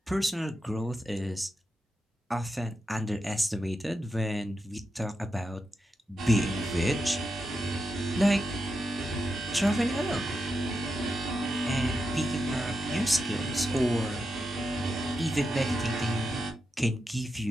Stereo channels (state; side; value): normal; both; correlation 0.87